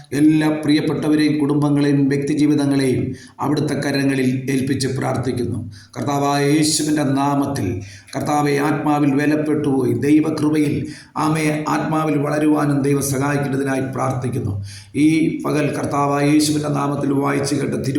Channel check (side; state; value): both; identical; correlation 1.00